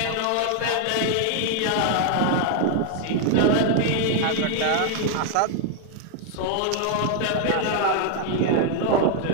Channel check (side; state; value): both; different; correlation 0.00